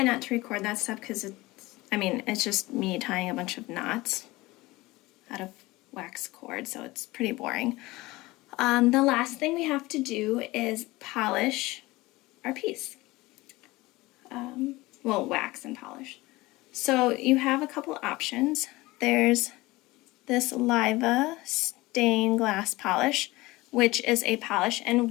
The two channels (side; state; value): right; quieter; 20.4 dB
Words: not to record that stuff because it's just me tying a bunch of knots out of wax cord, so it's pretty boring. The last thing we have to do is polish our piece. Well, wax and polish. So you have a couple options. There's this Liva stained glass polish, which is a polish and